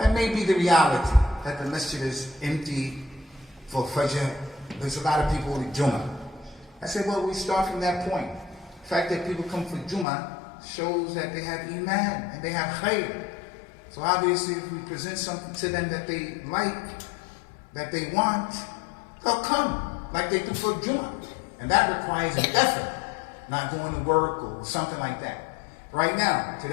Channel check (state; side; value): drops out; right; at 10.1 s